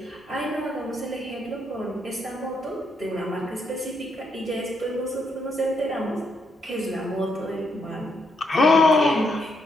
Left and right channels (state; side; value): normal; both; correlation 0.77